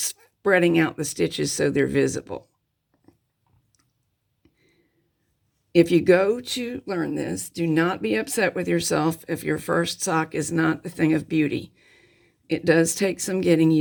out the stitches so they're visible. If you go to learn this, do not be upset with yourself if your first sock is not the thing of beauty. It does take some getting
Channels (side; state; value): both; identical; correlation 1.00